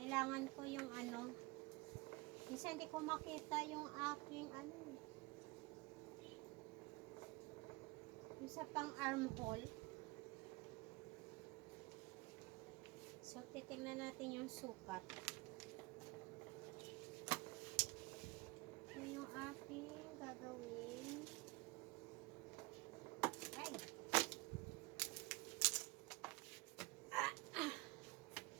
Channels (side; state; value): left; quieter; 24.6 dB